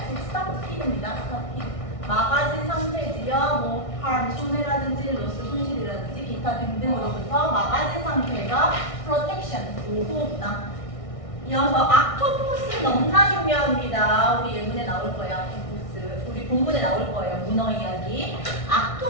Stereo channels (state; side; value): late; right; 1.6 ms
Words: stop입니다. stop. 막아진 상태지요. 뭐 harm, 손해라든지 loss, 손실이라든지 기타 등등으로부터 막아진 상태가 protection, 보호구나. 이어서 악토포스 너무나 중요합니다. 우리 예문에 나올 거예요. 악토포스. 우리 본문에 나올 거예요. 문어 이야기.